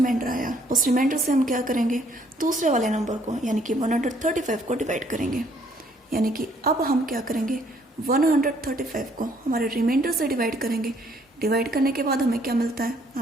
आया उस रिमाइंडर से हम क्या करेंगे, दूसरे वाले नंबर को यानी कि 135 को डिवाइड करेंगे। यानी कि अब हम क्या करेंगे, 135 को हमारे रिमाइंडर से डिवाइड करेंगे। डिवाइड करने के बाद हमें क्या मिलता है,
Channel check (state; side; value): normal; both; correlation 0.65